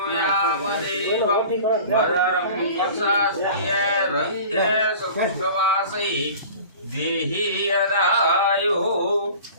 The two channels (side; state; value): both; inverted; correlation -0.41